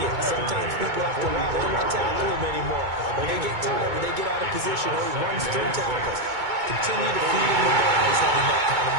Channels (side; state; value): left; late; 2.2 ms